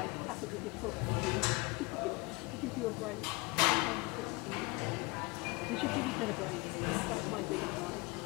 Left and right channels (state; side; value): quieter; right; 25.9 dB